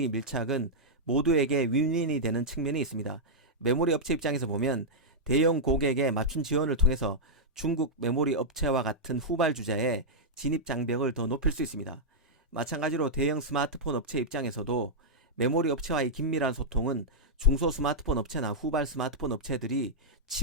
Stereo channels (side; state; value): both; normal; correlation -0.07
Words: 밀착은 모두에게 윈윈이 되는 측면이 있습니다. 메모리 업체 입장에서 보면 대형 고객의 맞춤 지원을 통해서 중국 메모리 업체와 같은 후발주자의 진입 장벽을 더 높일 수 있습니다. 마찬가지로 대형 스마트폰 업체 입장에서도 메모리 업체와의 긴밀한 소통은 중소 스마트폰 업체나 후발 스마트폰 업체들이